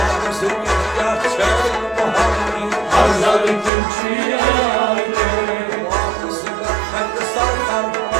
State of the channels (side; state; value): left; drops out; at 3.7 s